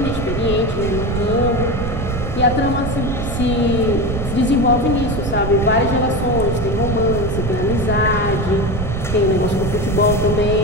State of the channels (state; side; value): noise; right; rumble, 4 dB below the sound